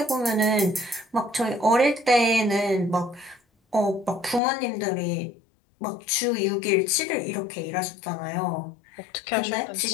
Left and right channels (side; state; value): right; drops out; at 4.4 s